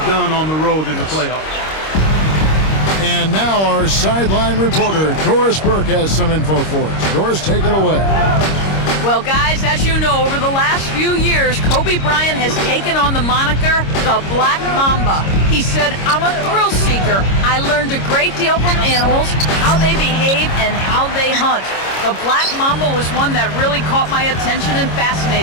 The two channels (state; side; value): late; right; 26 ms